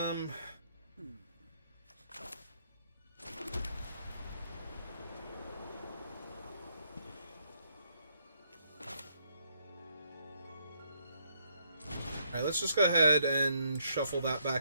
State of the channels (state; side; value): inverted; both; correlation -0.72